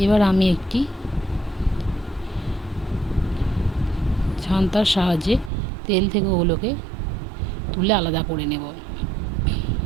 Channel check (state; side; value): drops out; left; at 5.5 s